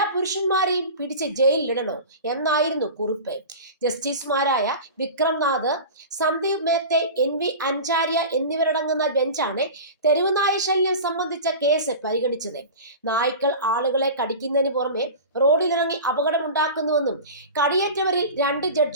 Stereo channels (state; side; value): inverted; both; correlation -0.32